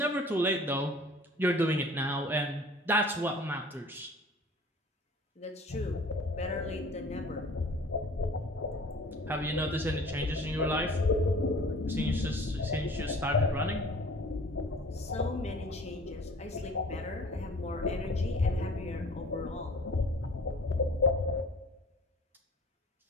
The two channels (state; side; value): normal; both; correlation 0.47